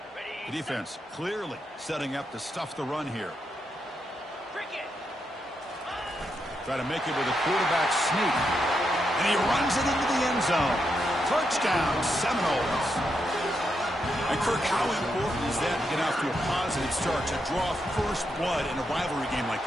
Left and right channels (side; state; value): both; normal; correlation 0.82